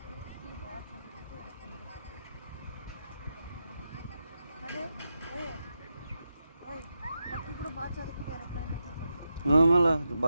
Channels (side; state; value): both; inverted; correlation -0.88